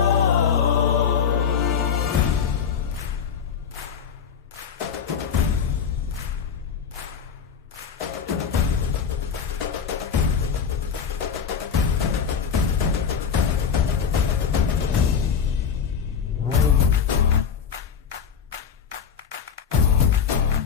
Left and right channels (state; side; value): quieter; right; 7.1 dB